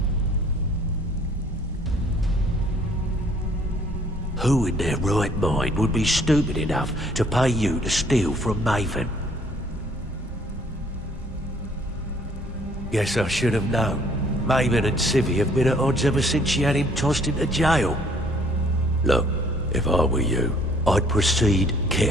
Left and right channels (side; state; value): both; normal; correlation 0.60